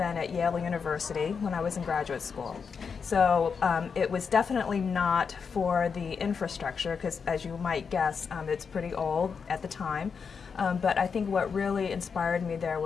at Yale University when I was in graduate school. So it was definitely not for the infrastructure, because as you might guess, it's pretty old at the time. But I think what really inspired me there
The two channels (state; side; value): quieter; right; 5.9 dB